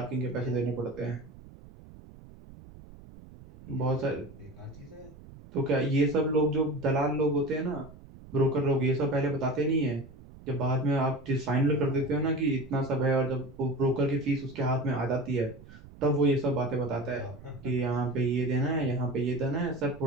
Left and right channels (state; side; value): noise; right; rumble, 19 dB below the sound